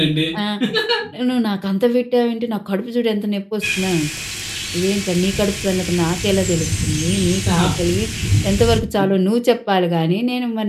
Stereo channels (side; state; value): both; identical; correlation 1.00